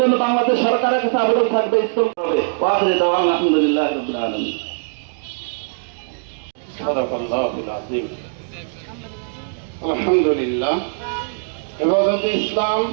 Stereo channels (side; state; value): left; silent; digital silence